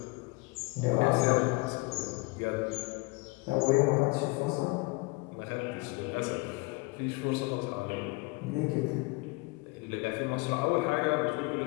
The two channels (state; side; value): quieter; right; 25.7 dB